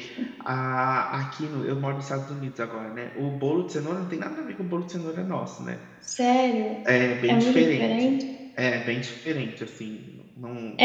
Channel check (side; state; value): both; identical; correlation 1.00